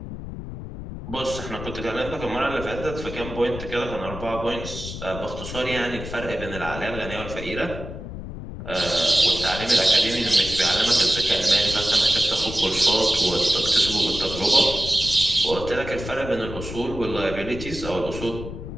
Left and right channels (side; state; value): left; noise; rumble, 9 dB below the sound